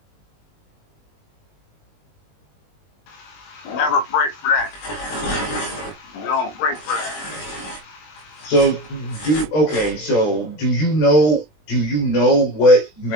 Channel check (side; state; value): right; late; 20 ms